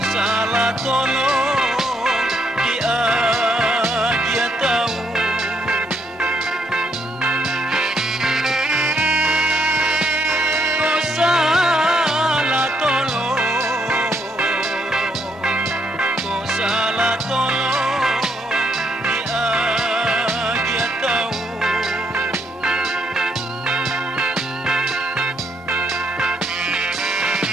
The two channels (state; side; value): normal; both; correlation 0.75